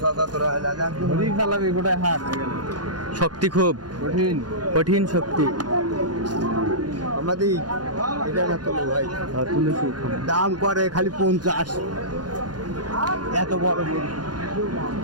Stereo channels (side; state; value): left; late; 0.70 ms